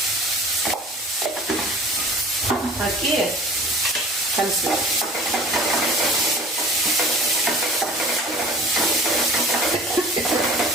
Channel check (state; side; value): normal; both; correlation 0.44